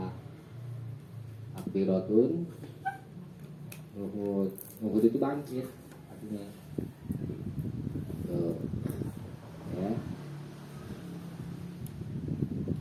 Takbiratul nuhud itu bangkit artinya tuh ya.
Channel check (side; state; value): both; identical; correlation 1.00